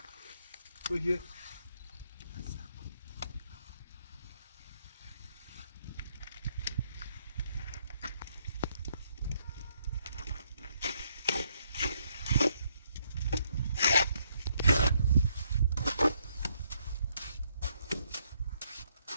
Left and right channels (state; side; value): inverted; both; correlation -0.72